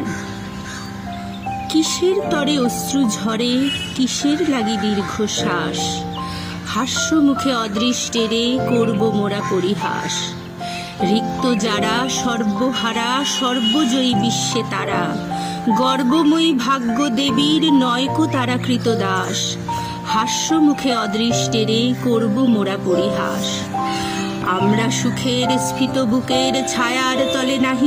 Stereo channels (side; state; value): both; identical; correlation 1.00